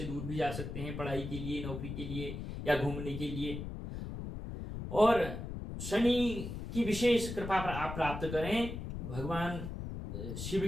दूर भी जा सकते हैं पढ़ाई के लिए, नौकरी के लिए या घूमने के लिए। और शनि की विशेष कृपा आप प्राप्त करें, भगवान शिव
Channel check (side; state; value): left; noise; rumble, 7 dB below the sound